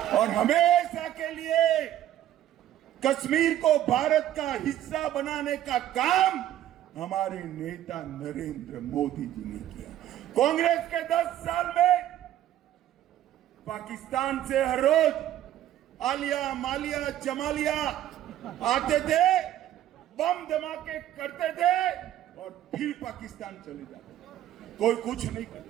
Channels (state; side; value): quieter; left; 12.3 dB